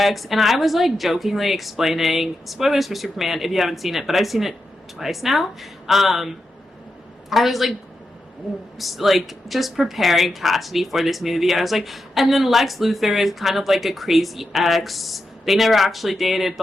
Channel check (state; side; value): normal; both; correlation 0.87